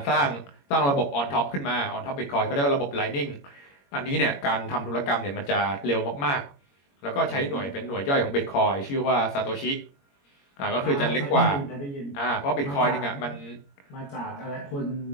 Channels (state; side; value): late; right; 21 ms